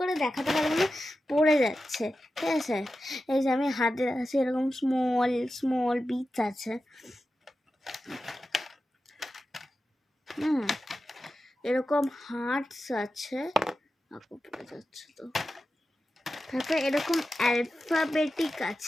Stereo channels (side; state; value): both; normal; correlation 0.92